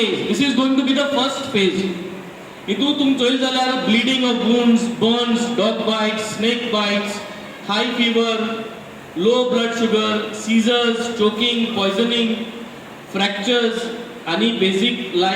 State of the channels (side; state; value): both; identical; correlation 1.00